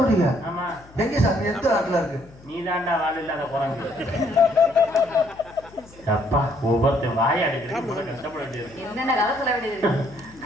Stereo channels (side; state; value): left; noise; hum, 23 dB below the sound